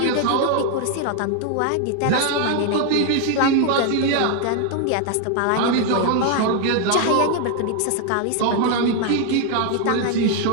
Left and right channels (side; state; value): both; different; correlation 0.00